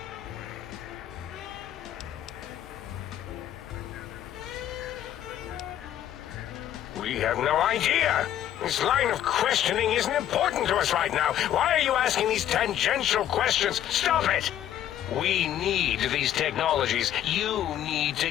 We have no idea. This line of questioning isn't important to us right now. Why are you asking these tangential questions? Stop it! We need these technologies. You need to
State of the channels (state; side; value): quieter; right; 11.3 dB